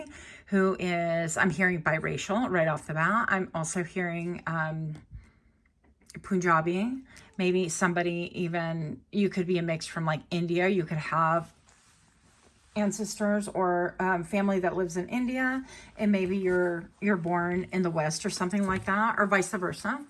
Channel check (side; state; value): both; identical; correlation 1.00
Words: who is, I'm hearing biracial right off the bat. I'm also hearing Punjabi. Maybe somebody even, you could be a mix from like India. You could have ancestors or family that lives in India, and maybe you're born in the West or something like that, or vice versa,